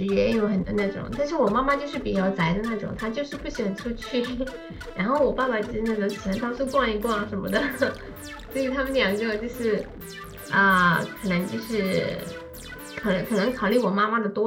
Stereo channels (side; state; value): both; identical; correlation 1.00